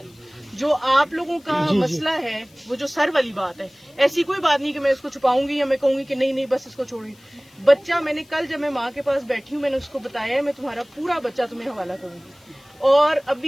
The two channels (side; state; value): left; noise; hiss, 29 dB below the sound